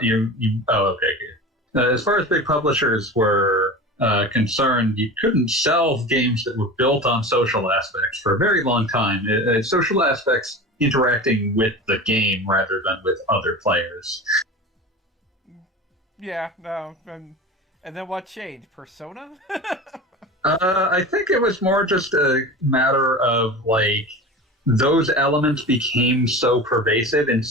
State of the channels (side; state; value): both; normal; correlation 0.32